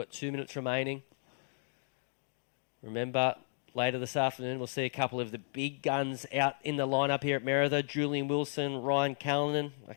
2 minutes remaining. Remember, later this afternoon, we'll see a couple of the big guns out in the lineup here at Merida. Julian Wilson, Ryan Callanan, a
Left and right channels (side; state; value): right; silent; digital silence